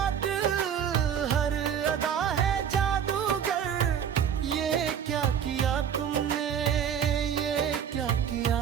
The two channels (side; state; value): left; quieter; 8.4 dB